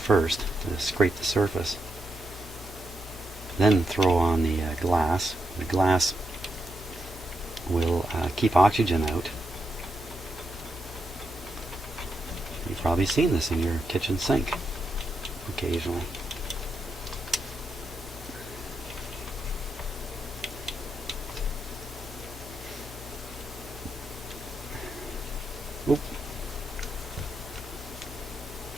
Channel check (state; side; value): normal; both; correlation 0.83